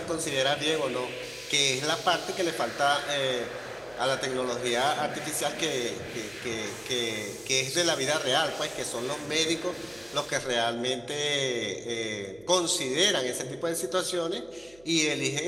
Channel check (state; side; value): noise; right; hum, 27 dB below the sound